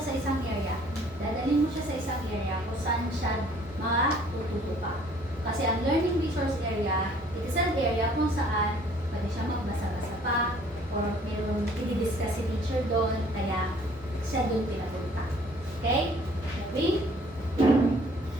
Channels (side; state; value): both; normal; correlation 0.57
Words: sa isang area, dadalhin mo siya sa isang area kung saan siya matututo pa. Kasi ang learning resource area, it is an area kung saan pwede siya magbasa-basa pa or mayroong i-discuss si teacher doon, kaya siya doon pinapunta. Okay? Okay?